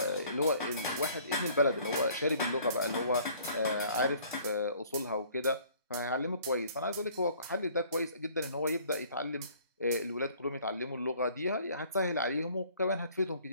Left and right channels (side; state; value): both; inverted; correlation -0.56